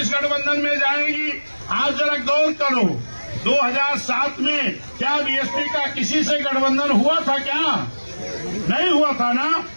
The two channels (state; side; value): inverted; both; correlation -1.00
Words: गठबंधन में जाएंगी। आज जरा गौर करो, 2007 में क्या BSP का किसी से गठबंधन हुआ था? क्या नहीं हुआ था ना?